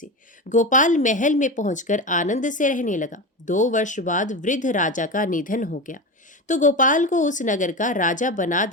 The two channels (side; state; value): both; normal; correlation 0.23